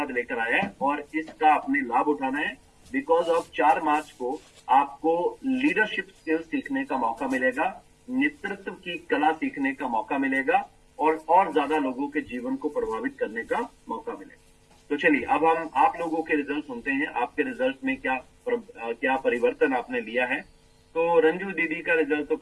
लेकर आया है। और इसका अपने लाभ उठाना है। बिकॉज ऑफ 4 मार्च को आपको लीडरशिप स्किल्स सीखने का मौका मिलेगा, नेतृत्व की कला सीखने का मौका मिलेगा, और ज्यादा लोगों के जीवन को प्रभावित करने का मौका मिलेगा। तो चलिए, अब हम आप लोगों के रिजल्ट सुनते हैं। आपके रिजल्ट में क्या परिवर्तन आपने लिया है। तो रंजू दीदी का रिजल्ट तो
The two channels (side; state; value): both; identical; correlation 1.00